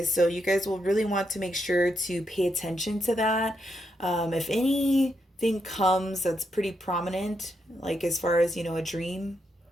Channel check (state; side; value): normal; both; correlation 0.81